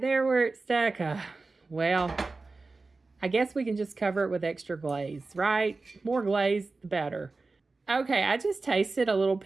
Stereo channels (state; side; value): quieter; left; 3.7 dB